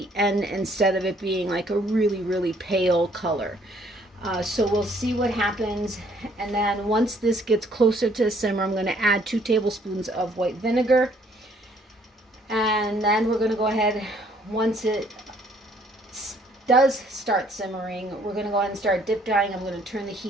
end, instead of it being like a really, really pale color. So we'll see what happens. And then once this gets closer to the simmer, I'm going to add 2 tablespoons of white vinegar. And then we're going to go ahead, once it does start simmering, we're going to go ahead and start dip dyeing. I'm going to turn the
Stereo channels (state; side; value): normal; both; correlation 0.63